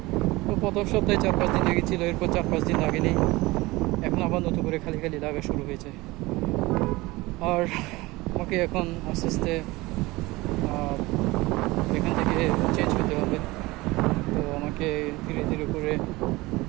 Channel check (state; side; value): quieter; left; 21.1 dB